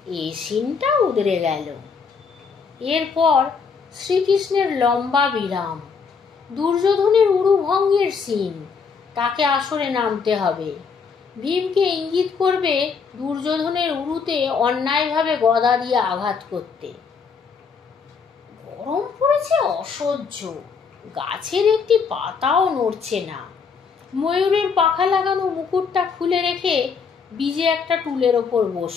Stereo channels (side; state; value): right; quieter; 5.6 dB